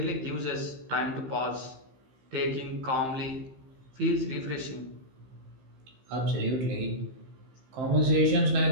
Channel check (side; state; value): left; late; 15 ms